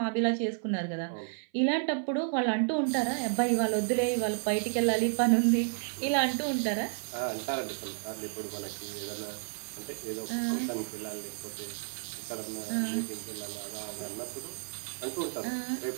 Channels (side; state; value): left; silent; 56 dB below the other